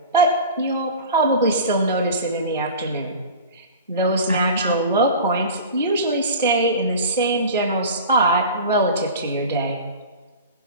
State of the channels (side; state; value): both; inverted; correlation -0.36